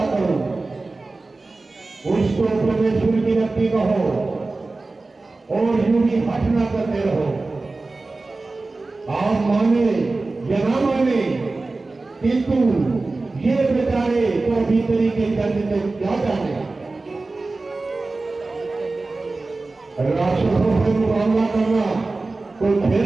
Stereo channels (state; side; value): quieter; left; 3.4 dB